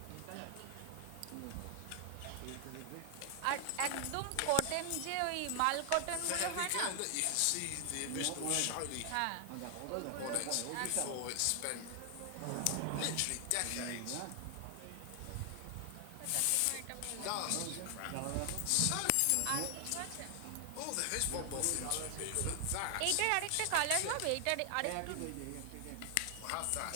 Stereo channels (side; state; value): both; different; correlation 0.00